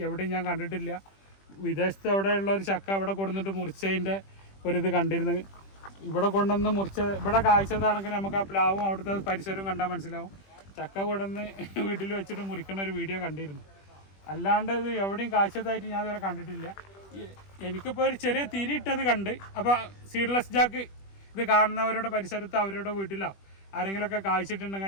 എവിടെയും ഞാൻ കണ്ടിട്ടില്ല. വിദേശത്ത് എവിടെയുള്ള ഒരു ചക്ക ഇവിടെ കൊണ്ടുവന്നിട്ട് മുറിച്ചതിൻ്റെ ഒരിത് കണ്ടിരുന്നു. ഇവിടെ കൊണ്ടുവന്ന് ഇവിടെ കായ്ച്ചതാണെങ്കിൽ നമുക്ക് ആ പ്ലാവും അവിടുത്തെ പരിസരവും കണ്ടാൽ മനസ്സിലാവും. ചക്ക കൊണ്ടുവന്ന് വീട്ടിൽ വെച്ചിട്ട് മുറിക്കുന്ന ഒരു വീഡിയോ കണ്ടിരുന്നു. അല്ലാണ്ട് ഇത് എവിടെയും കാഴ്ചതായിട്ട് ഞാൻ ഇതുവരെ കണ്ടിട്ടില്ല. എനിക്കിപ്പോൾ ഒരു ചെറിയ തിരിയിട്ടത് കണ്ട്. അപ്പോൾ സീഡ്ലെസ് ജാക്ക് ഇത് കാണുന്നവരുടെ പരിസരത്ത് അവരുടെ വീട്ടിലോ ആരെങ്കിലുമൊക്കെ കാഴ്ചിട്ടുണ്ടെങ്കിൽ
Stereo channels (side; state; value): right; late; 20 ms